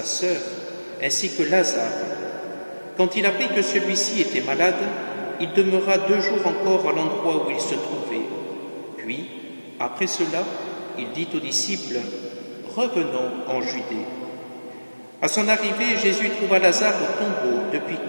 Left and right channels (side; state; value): both; inverted; correlation -1.00